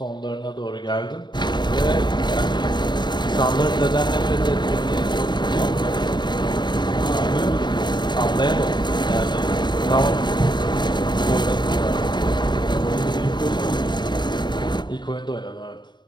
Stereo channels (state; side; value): late; right; 0.21 ms